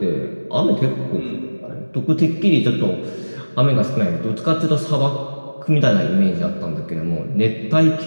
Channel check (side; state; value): both; inverted; correlation -1.00